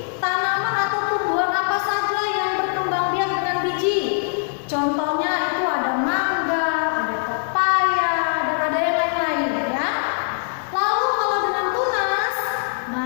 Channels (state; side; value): silent; right; digital silence